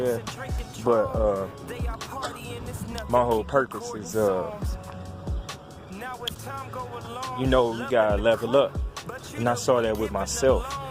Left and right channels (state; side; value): identical; both; correlation 1.00